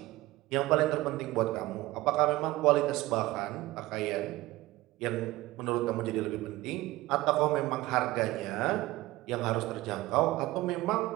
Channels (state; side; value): quieter; left; 18.3 dB